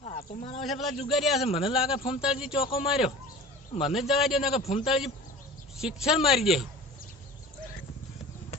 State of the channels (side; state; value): both; normal; correlation 0.39